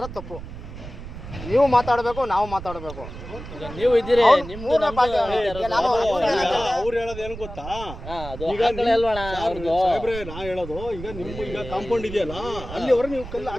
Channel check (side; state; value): right; noise; rumble, 11 dB below the sound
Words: ತಪ್ಪು, ನೀವು ಮಾತಾಡಬೇಕು, ನಾವು ಮಾತಾಡಬೇಕು. ನೀವು ಇದ್ದೀರಿ, ಅವ್ರು ಹೇಳೋದು ಏನು ಗೊತ್ತಾ, ಈಗ ಸಾಹೇಬ್ರೆ ನಾ ಹೇಳೋದು, ಈಗ ನಿಮ್ ಈಗ ಕಾಂಪೌಂಡ್ ಇದೆಯಲ್ಲ, ಅಲ್ಲಿವರೆಗೆ ನೀವು ಕಲ್ಲು